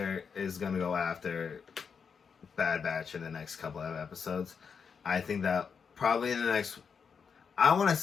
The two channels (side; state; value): right; quieter; 6.2 dB